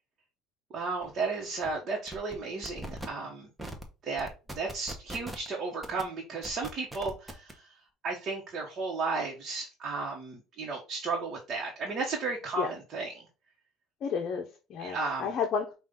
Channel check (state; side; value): normal; both; correlation 0.48